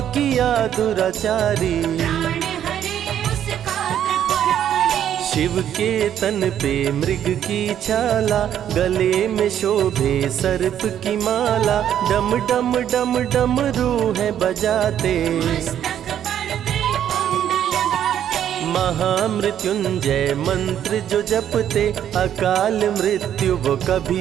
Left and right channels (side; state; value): left; quieter; 10.2 dB